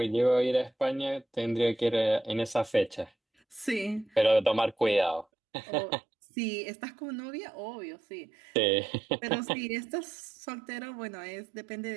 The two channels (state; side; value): drops out; left; at 5.2 s